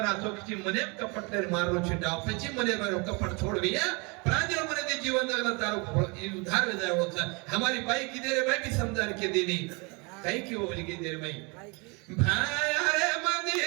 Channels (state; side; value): quieter; left; 29.8 dB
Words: चौथी मने कपट तेरे मारो छिटा पची मने मारो कपट छोड़ दिया प्रांजल मने दे जीवन जगला तारो उधार में जाए होता हमारी बाई की देरे भाई भी समझा के देनी कहीं क्यों बोली की देरे भाई भाई अरे